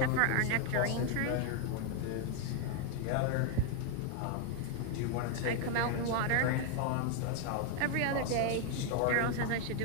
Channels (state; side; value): different; both; correlation 0.01